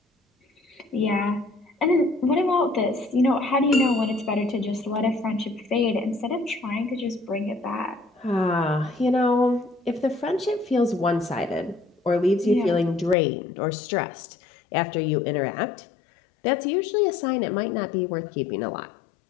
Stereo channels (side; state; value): right; drops out; at 13.2 s